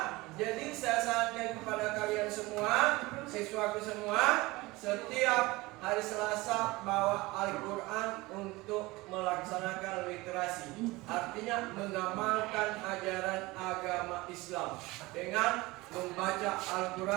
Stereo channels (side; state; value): left; quieter; 21.4 dB